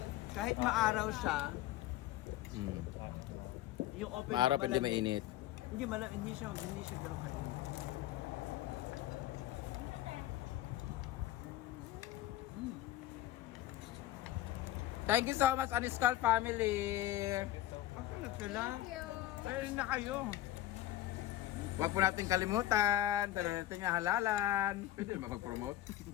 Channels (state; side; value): quieter; right; 14.4 dB